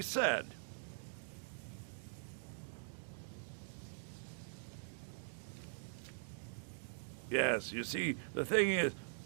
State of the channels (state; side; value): silent; left; digital silence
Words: said. Yes, you see, the thing is,